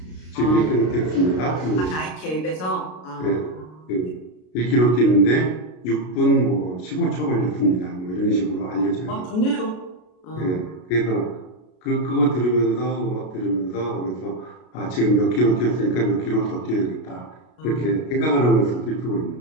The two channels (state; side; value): late; right; 33 ms